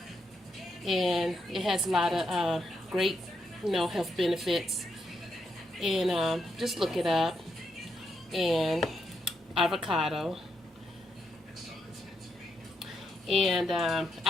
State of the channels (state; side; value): normal; both; correlation 0.81